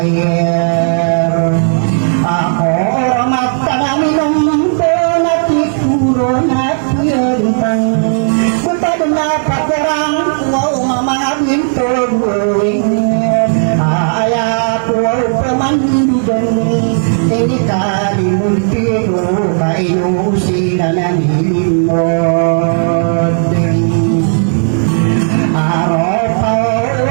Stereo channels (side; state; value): left; silent; digital silence